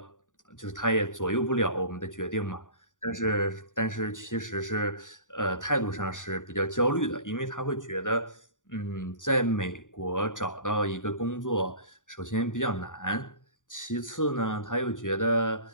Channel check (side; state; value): right; late; 0.87 ms